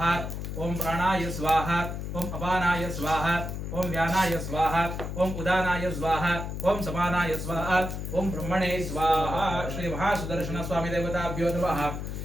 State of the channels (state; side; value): noise; left; hum, 5 dB below the sound